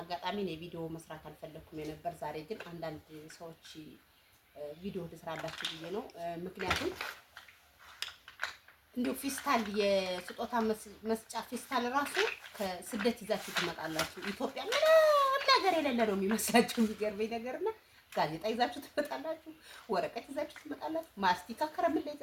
ነው ቪዲዮ መስራት አልፈለኩም የነበር። ዛሬ ግን አንዳንድ ሰዎች ቪዲዮ ልስራላችሁ ብዬ ነው። ምክንያቱም እንዴው ፊስታል የስጦታ መስጫ ፊስታል ራሱ ከስደት ይዛችሁ ትመጣላችሁ። ኢትዮጵያ ምንም ነገር የሌለ ነው የሚመስላችሁ። የሚገርመኝ ነገርና ጋዜጣ ይዛችሁ ትመጣላችሁ፣ ወረቀት ይዛችሁ ትመጣላችሁ፣ ማስቲካ ከረሜላ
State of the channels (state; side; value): identical; both; correlation 1.00